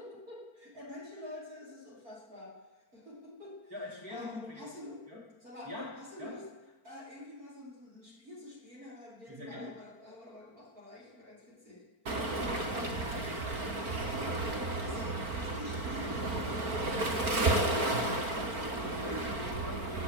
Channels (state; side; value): late; left; 4.4 ms